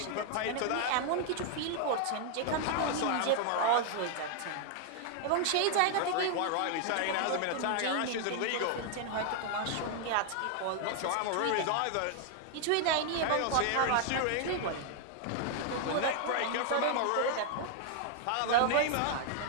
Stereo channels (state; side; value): different; both; correlation 0.00